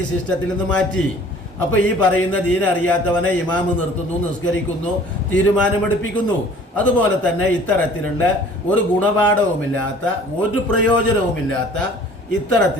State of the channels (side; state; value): both; normal; correlation 0.50